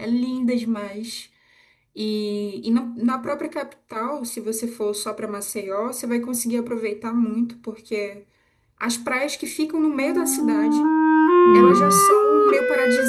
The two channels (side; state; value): both; identical; correlation 1.00